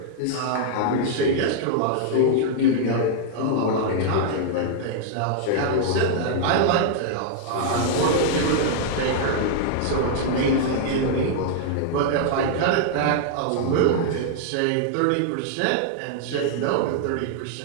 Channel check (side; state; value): both; different; correlation -0.01